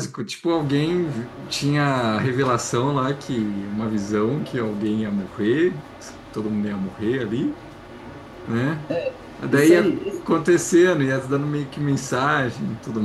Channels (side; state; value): both; identical; correlation 1.00